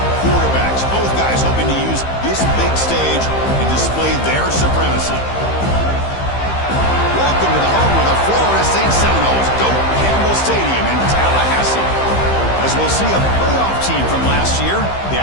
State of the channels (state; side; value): late; right; 15 ms